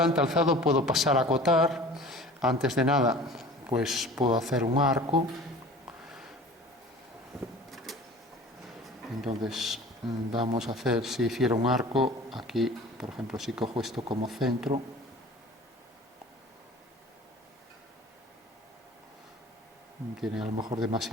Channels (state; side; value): normal; both; correlation 0.43